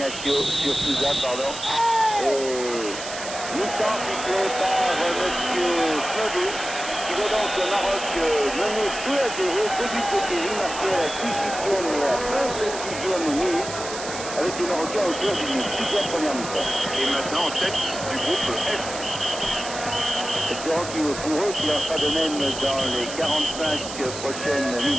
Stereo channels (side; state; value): right; noise; hiss, 9 dB below the sound